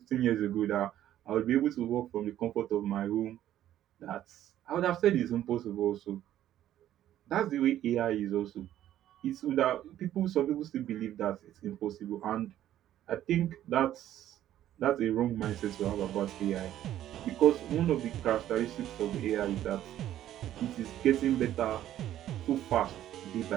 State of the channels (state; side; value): quieter; left; 12.2 dB